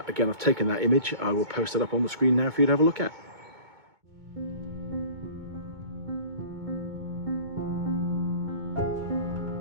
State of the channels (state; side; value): late; left; 2.2 ms